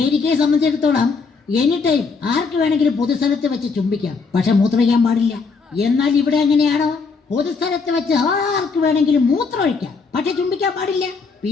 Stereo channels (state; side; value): quieter; right; 4.7 dB